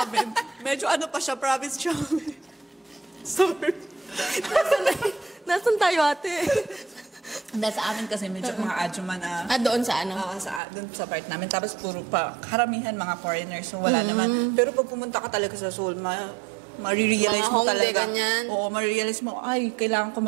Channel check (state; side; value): drops out; left; at 10.6 s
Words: amin. Medyo pa siya, province siya. Sorry. Nasaan tayo, ate? Sa amin kasi medyo mga adjuman na... Doon sa doon sa part namin. Tapos puro karamihan mga foreigners. So wala naman. Pero pag pumunta ka talaga sa Seoul, marirealize mo talaga. Oo, marirealize mo, ay, kailangan ko